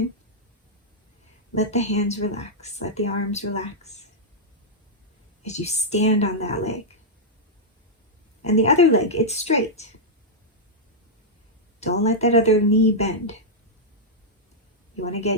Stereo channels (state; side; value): normal; both; correlation -0.07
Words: Let the hands relax. Let the arms relax as you stand on that leg. And the other leg, it's straight. Don't let that other knee bend. You want to